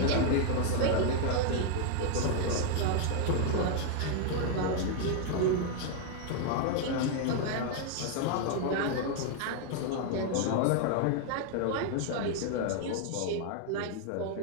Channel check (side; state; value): both; different; correlation 0.00